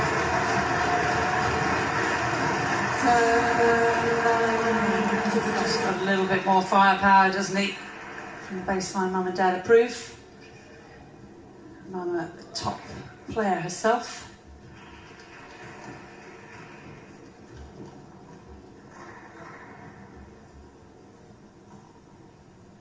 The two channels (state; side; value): identical; both; correlation 1.00